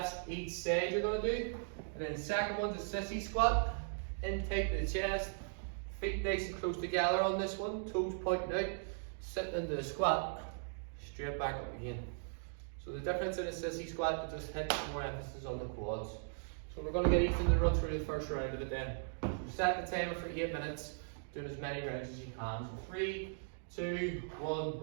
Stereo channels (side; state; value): left; silent; digital silence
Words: each side you're going to do. And then the second one's a sissy squat. In tight to the chest, feet nice and close together on this one, toes pointing out, sitting into the squat, straight back up again. So the difference in a sissy squat is just hit more emphasis on the quads. So we're going to get Ethan to run through the first round of it then. So set the timer for 8 minutes, doing as many rounds as you can. So 3, 2, 1,